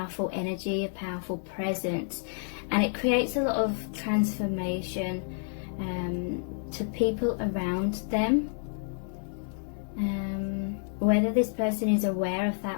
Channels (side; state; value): right; silent; 58 dB below the other